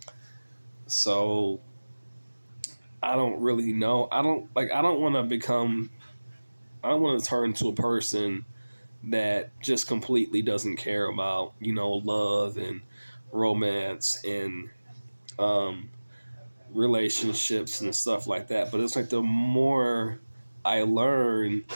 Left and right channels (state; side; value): inverted; both; correlation -1.00